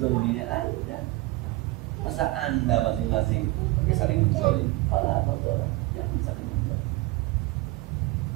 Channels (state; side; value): quieter; left; 20.1 dB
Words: Anda. Masa Anda masing-masing pakai saling menzalim? Fala tadhalamu, jangan saling menzalim.